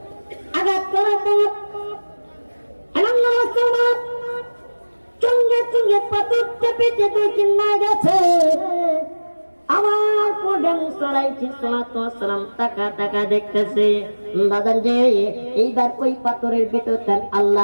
আঘাত করার পর চঙ্গে চঙ্গে পাথর চেপে চেপে চিন্না গেছে। আমার পরে মুসালাইহিস সালাম টাকা টাকা দেখতেছে। বাজান যে এইবার ওই পাথরের ভিতরে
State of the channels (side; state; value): both; inverted; correlation -1.00